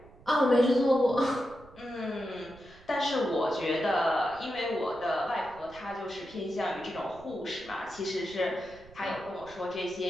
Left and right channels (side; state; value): right; noise; rumble, 23 dB below the sound